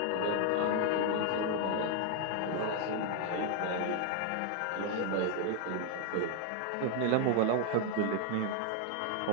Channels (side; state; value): both; different; correlation 0.00